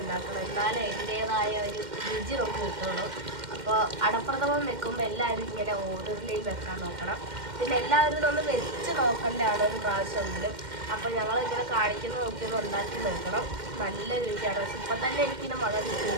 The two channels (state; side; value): late; left; 2.1 ms